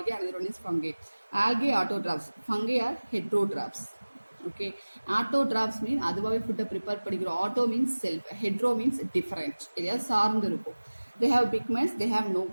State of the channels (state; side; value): inverted; both; correlation -1.00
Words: another one is fungi. Algae autotrophs, fungi are heterotrophs. Okay, autotrophs mean அதுவாகவே ஃபுட்டை ப்ரிப்பேர் பண்ணிக்கிறோம். Auto means self, hetero means different, எதையாவது சார்ந்து இருக்கும். They have pigments, they have no